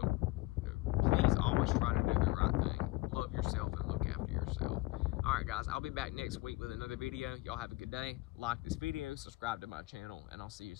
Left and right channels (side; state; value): right; quieter; 20.3 dB